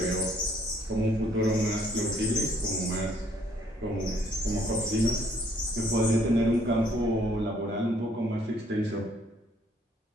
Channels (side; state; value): both; normal; correlation 0.65